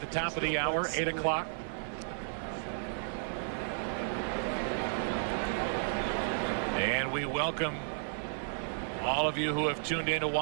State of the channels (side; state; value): left; silent; 56 dB below the other